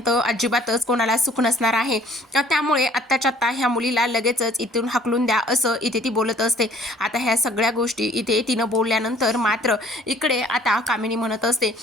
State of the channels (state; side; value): normal; both; correlation 0.56